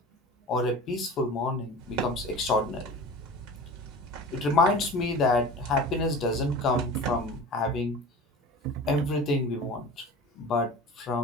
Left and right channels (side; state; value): both; normal; correlation 0.37